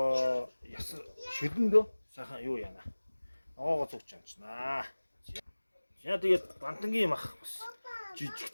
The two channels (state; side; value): inverted; both; correlation -1.00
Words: яс шүлэндөө сайхан юу яана. Ногоогоо зүгч чамчнаа. За тэгээд бантангийн мах бас